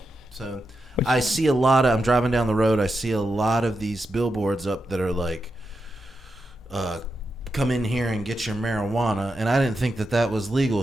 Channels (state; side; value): normal; both; correlation 0.87